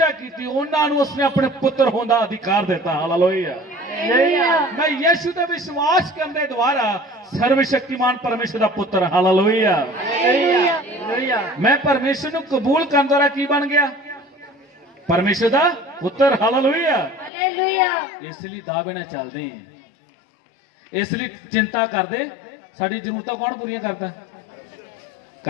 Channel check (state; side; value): drops out; right; at 17.3 s